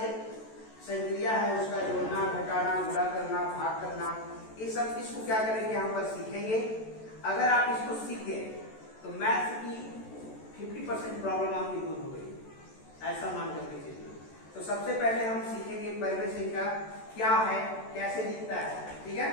संक्रिया है उसका जोड़ना, घटाना, गुणा करना, भाग करना, ये सब चीज को क्या करेंगे यहाँ पर सीखेंगे। अगर आप इसको सीख गए तो मैथ्स की 50% प्रॉब्लम आपकी दूर हो गई, ऐसा मान करके चलिए। तो सबसे पहले हम सीखेंगे परमेय संख्या क्या है, कैसे दिखता है, ठीक है,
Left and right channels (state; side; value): late; right; 14 ms